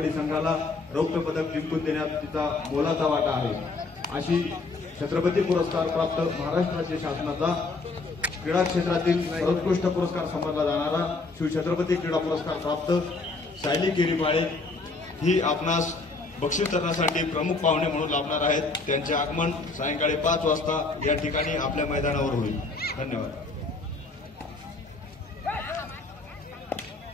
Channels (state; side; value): quieter; right; 3.7 dB